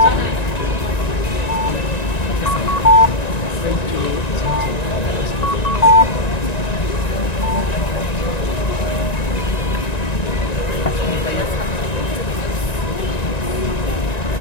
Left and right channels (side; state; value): right; late; 1.9 ms